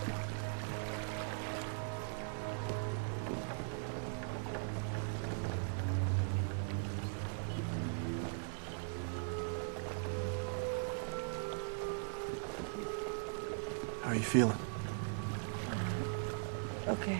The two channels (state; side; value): silent; left; digital silence